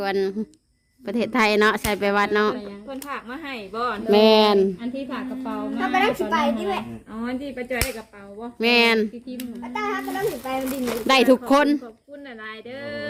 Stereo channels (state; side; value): identical; both; correlation 1.00